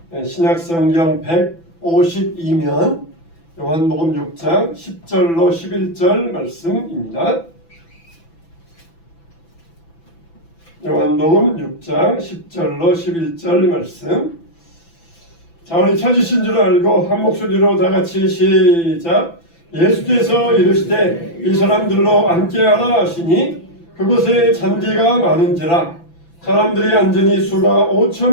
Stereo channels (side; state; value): right; late; 6.0 ms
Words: 신약성경 152면 요한복음 6장 10절로 11절 말씀입니다. 요한복음 6장 10절로 11절 말씀. 자, 우리 찾으신 줄 알고 한 목소리로 다 같이 시작. 예수께서 이르시되 이 사람들로 앉게하라 하시니 그곳에 잔디가 많은지라 사람들이 앉으니 수가